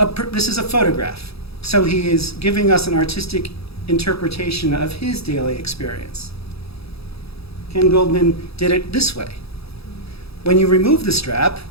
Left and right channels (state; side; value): late; right; 0.77 ms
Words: photograph. So he is giving us an artistic interpretation of his daily experience. Ken Goldman did it this way. When you remove the strap,